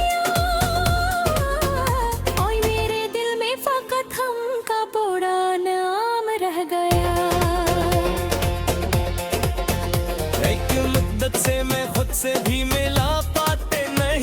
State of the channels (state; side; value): identical; both; correlation 1.00